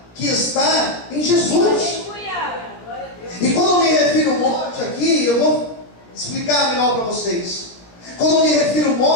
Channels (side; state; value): right; late; 17 ms